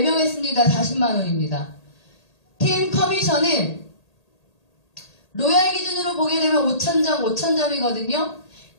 했습니다. 40만원입니다. 팀 커미션은 로얄 기준으로 보게 되면 5천점이거든요.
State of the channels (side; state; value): right; late; 1.8 ms